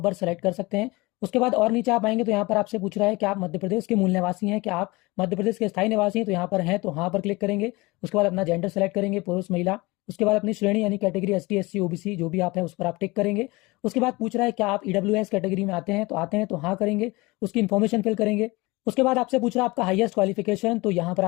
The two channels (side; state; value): right; quieter; 23.1 dB